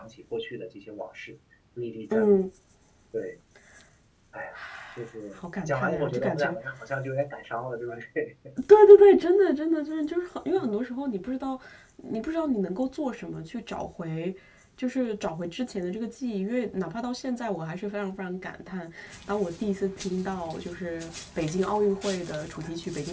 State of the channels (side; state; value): both; identical; correlation 1.00